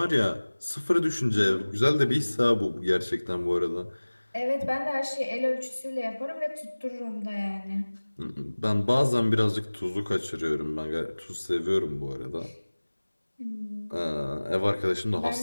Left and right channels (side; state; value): both; inverted; correlation -1.00